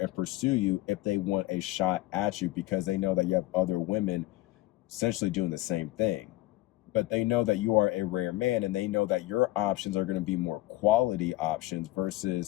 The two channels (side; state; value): right; quieter; 17.7 dB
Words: and pursue you if they want a shot at you, because they know that you have other women essentially doing the same thing. But they know that you are a rare man, and they know that your options are going to be more quality options,